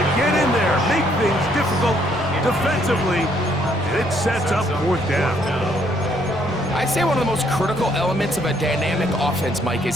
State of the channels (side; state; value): left; noise; rumble, 21 dB below the sound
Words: get in there, make things difficult defensively. It sets up fourth down. I'd say one of the most critical elements of a dynamic offense, Mike,